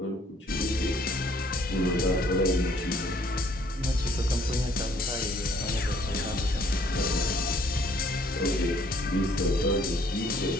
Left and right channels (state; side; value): normal; both; correlation 0.62